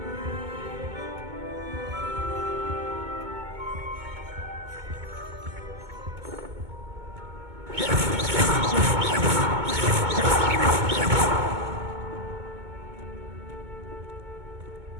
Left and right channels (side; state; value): left; late; 2.2 ms